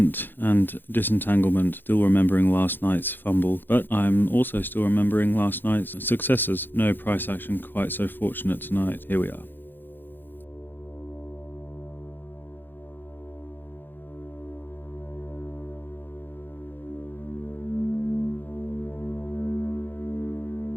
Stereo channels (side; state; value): right; late; 0.095 ms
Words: and disentanglement. Still remembering last night's fumble, but I'm also still remembering last night's successes. No price action quite so fortunate tonight. Here we are.